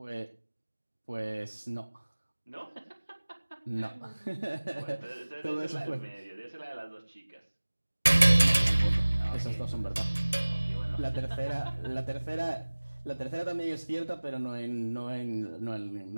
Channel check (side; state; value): both; inverted; correlation -1.00